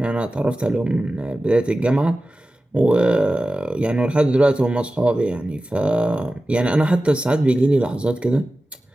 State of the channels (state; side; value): normal; both; correlation 0.95